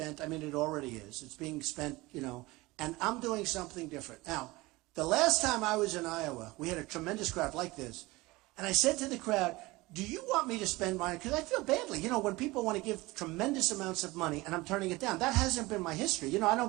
I mean, it already is. It's being spent, you know, and I'm doing something different. Now, the last time I was in Iowa, we had a tremendous crowd like this, and I said to the crowd, "Do you want me to spend money?" Because I feel badly. You know, when people want to give tremendous amounts of money and I'm turning it down, that hasn't been my history. You know, I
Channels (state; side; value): quieter; left; 21.3 dB